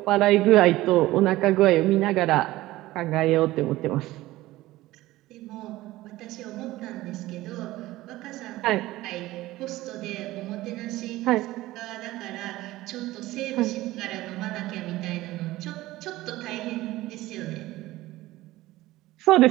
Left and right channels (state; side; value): quieter; left; 17.3 dB